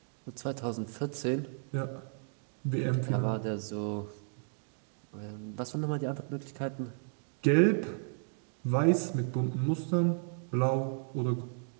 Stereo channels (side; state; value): left; silent; digital silence